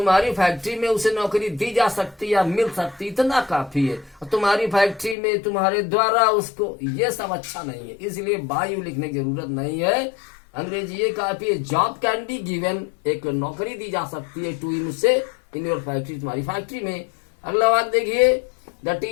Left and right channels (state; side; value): drops out; right; at 5.2 s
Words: फैक्ट्री में उसे नौकरी दी जा सकती या मिल सकती, इतना काफी है। और तुम्हारी फैक्ट्री में तुम्हारे द्वारा उसको, ये सब अच्छा नहीं है, इसलिए बाय लिखने की जरूरत नहीं है। अंग्रेजी ये काफी है, जॉब कैन बी गिवन, एक नौकरी दी जा सकती है टू इन उसे, इन योर फैक्ट्री, तुम्हारी फैक्ट्री में। अगला बात देखिए, the